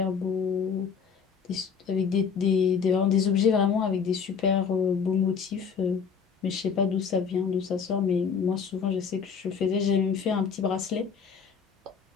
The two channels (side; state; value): right; quieter; 6.3 dB